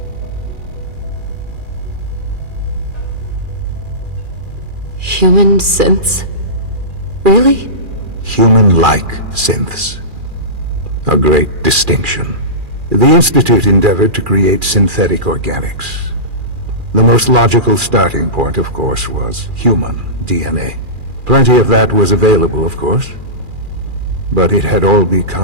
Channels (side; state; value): left; late; 2.4 ms